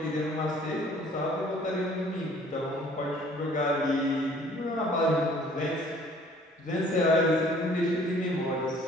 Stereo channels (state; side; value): normal; both; correlation 0.55